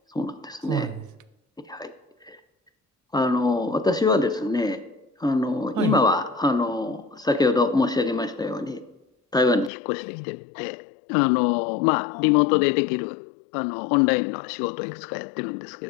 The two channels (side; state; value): right; drops out; at 9.7 s